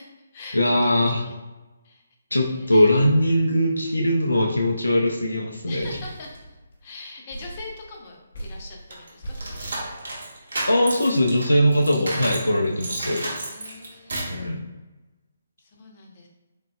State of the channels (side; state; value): both; inverted; correlation -0.87